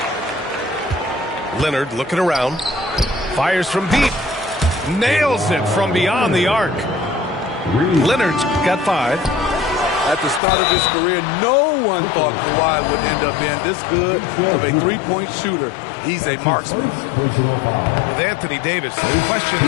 Leonard looking around. Fires from deep. Nails it from beyond the arc. Leonard's got 5. At the start of his career, no one thought Kawhi would end up being this good of a three-point shooter. He's a marksman. With Anthony Davis, the question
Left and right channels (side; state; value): right; drops out; at 10.4 s